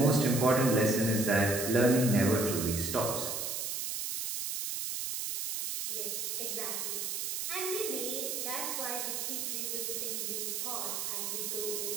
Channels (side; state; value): right; noise; hiss, 3 dB below the sound